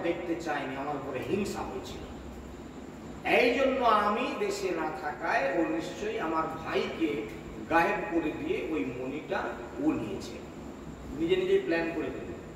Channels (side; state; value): both; identical; correlation 1.00